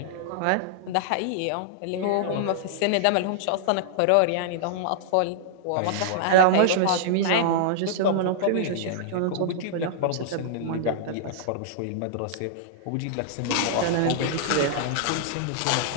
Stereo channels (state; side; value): different; both; correlation -0.02